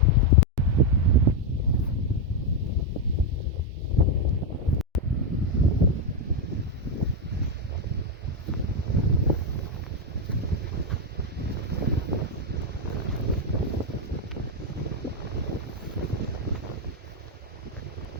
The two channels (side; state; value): both; normal; correlation 0.04